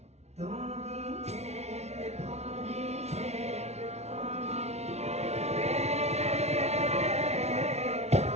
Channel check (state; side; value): late; left; 0.31 ms